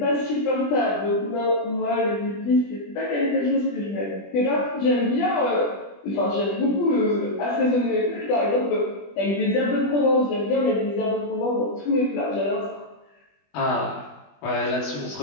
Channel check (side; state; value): right; late; 20 ms